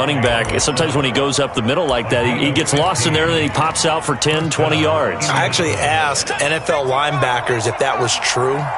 back. Sometimes when he goes up the middle like that, he gets lost in there and then he pops out for 10, 20 yards. I actually asked NFL linebackers if that was true.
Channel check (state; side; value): identical; both; correlation 1.00